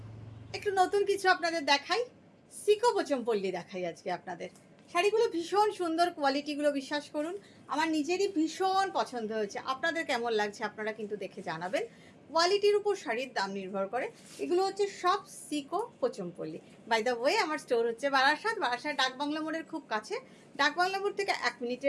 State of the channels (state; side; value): identical; both; correlation 1.00